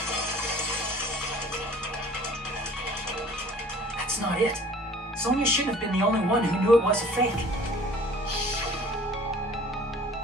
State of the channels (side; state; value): both; normal; correlation 0.49